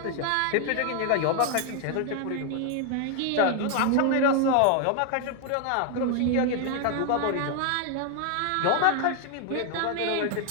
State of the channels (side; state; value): both; different; correlation 0.00